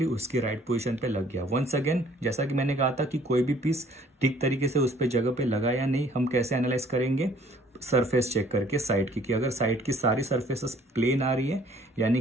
उसकी राइट पोजीशन पे लग गया। वंस अगेन जैसा कि मैंने कहा था कि कोई भी पीस ठीक तरीके से उस पे जगह पे लगा या नहीं, हम कैसे एनालाइज करेंगे, सरफेस चेक करके साइड की, कि अगर साइड की सारी सरफेसेस प्लेन आ रही है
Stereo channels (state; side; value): normal; both; correlation 0.58